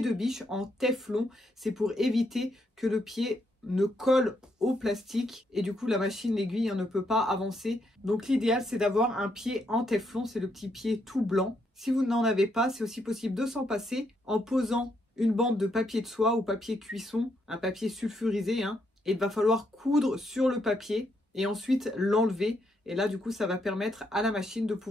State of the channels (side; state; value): both; normal; correlation 0.76